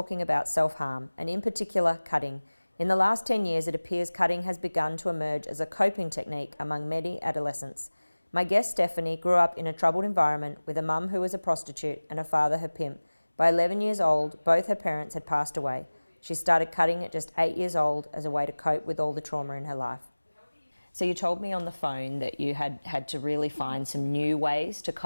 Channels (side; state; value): both; inverted; correlation -1.00